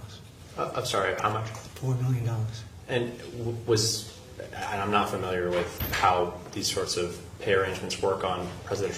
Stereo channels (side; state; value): both; identical; correlation 1.00